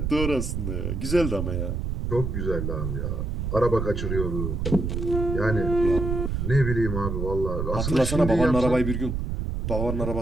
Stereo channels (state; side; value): noise; right; rumble, 2 dB below the sound